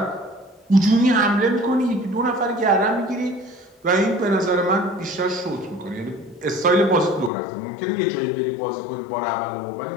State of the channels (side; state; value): right; drops out; at 7.3 s